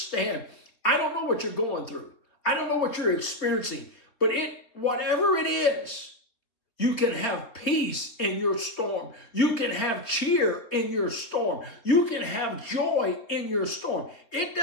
I don't know what you're going through. I don't know what you're experiencing, but whatever it is, you can have peace in your storm. You can have cheer in your storm. You can have joy in your storm. It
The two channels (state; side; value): late; right; 3.5 ms